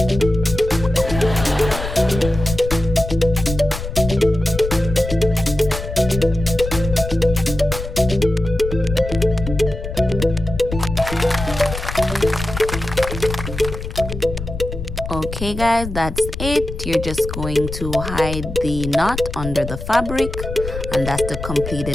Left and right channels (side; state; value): left; noise; rumble, 7 dB below the sound